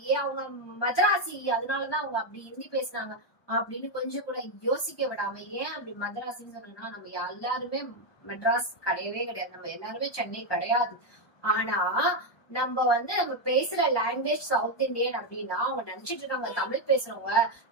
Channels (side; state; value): right; late; 1.2 ms